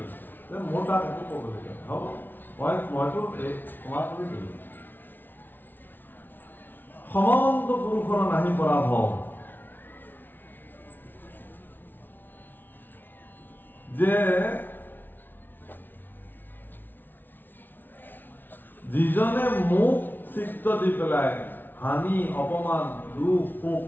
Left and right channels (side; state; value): right; late; 0.092 ms